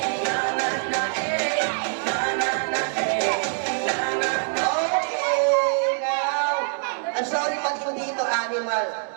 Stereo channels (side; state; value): left; silent; 62 dB below the other